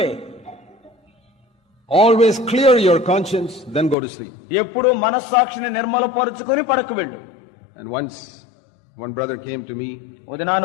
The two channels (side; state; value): right; drops out; at 4.0 s